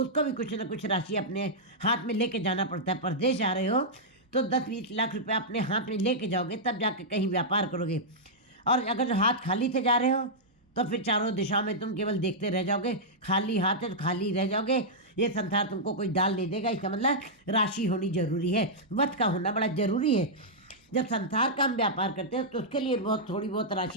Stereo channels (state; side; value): normal; both; correlation -0.09